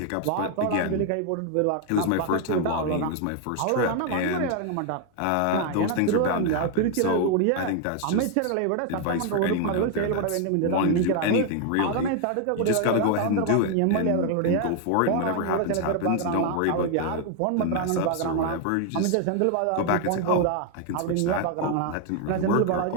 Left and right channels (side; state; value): both; different; correlation 0.00